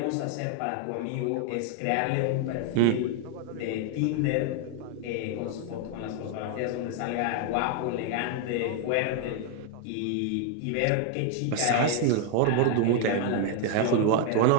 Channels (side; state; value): both; different; correlation 0.00